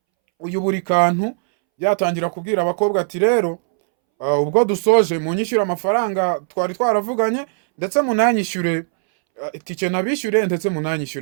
uyu Burikantu yatangira kubwira abakobwa ati rero ubwo dusoje munyishyura amafaranga twari twaravuganye, ndetse munanyishyure itike nabishyure, ndetse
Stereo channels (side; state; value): left; silent; 65 dB below the other